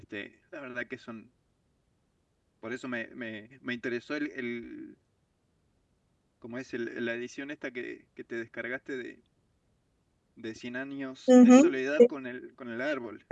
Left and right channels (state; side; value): identical; both; correlation 1.00